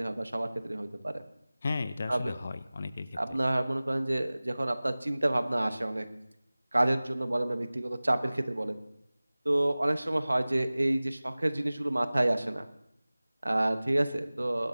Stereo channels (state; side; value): inverted; both; correlation -0.99